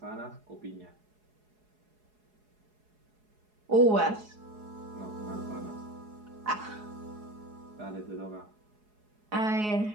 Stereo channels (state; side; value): late; left; 4.7 ms